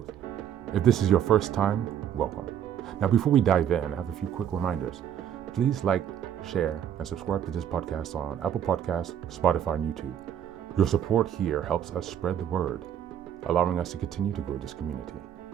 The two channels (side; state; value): left; quieter; 9.7 dB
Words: If this is your first time, welcome. Now, before we dive in, I have a few quick reminders. Please like, share, and subscribe to this podcast on Apple Podcasts, Spotify, and YouTube. Your support here helps us spread the word, allowing us to continue to grow this community.